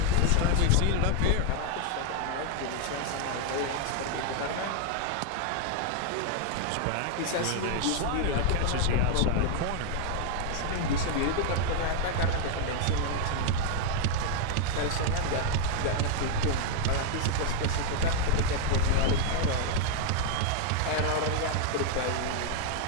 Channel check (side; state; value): both; different; correlation 0.00